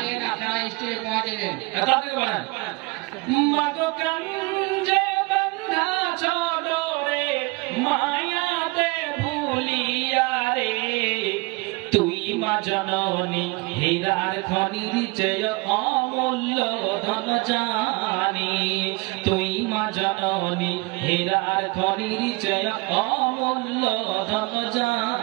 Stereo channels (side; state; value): left; quieter; 26.1 dB